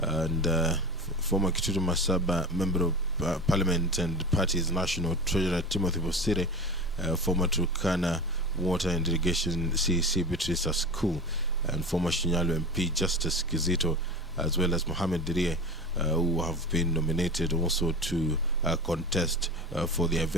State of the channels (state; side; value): normal; both; correlation 0.31